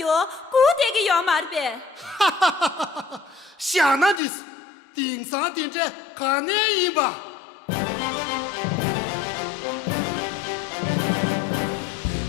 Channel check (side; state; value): right; drops out; at 4.2 s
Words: 구대기 요 말베 想那的是顶上顶着看那一吧。